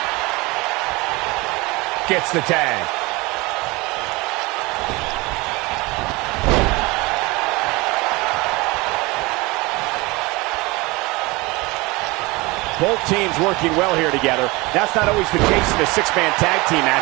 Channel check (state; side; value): quieter; left; 23.7 dB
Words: Gets the tag. Both teams working well here together. That's not always the case in a six-man tag team